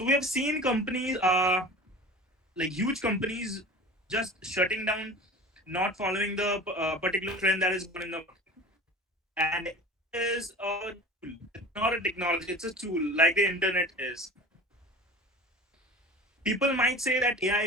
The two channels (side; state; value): both; normal; correlation 0.37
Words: we have seen companies, like huge companies, just shutting down, not following the particular trend that is going in the market. And AI is a tool. It's not a technology. It's a tool, like the internet is. People might say that